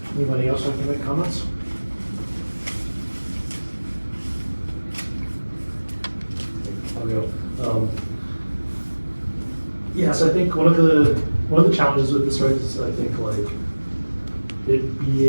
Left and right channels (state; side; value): inverted; both; correlation -1.00